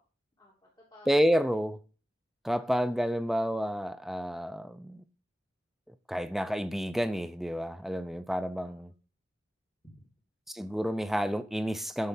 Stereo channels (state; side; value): normal; both; correlation 0.95